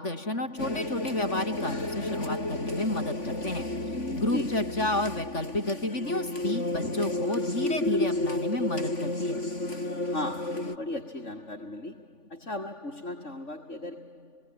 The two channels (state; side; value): late; right; 3.5 ms